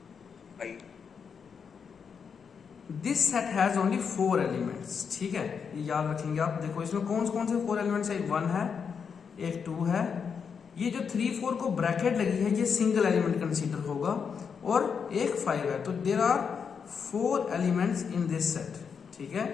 This set has only 4 elements. ठीक है, ये याद रखेंगे आप। देखो इसमें कौन से 4 एलिमेंट्स है। एक 1 है, एक 2 है। ये जो 3 4 को ब्रैकेट लगी है, ये सिंगल एलिमेंट कंसीडर होगा। और एक 5 है। तो there are 4 elements in this set. ठीक है,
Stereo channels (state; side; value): quieter; right; 6.4 dB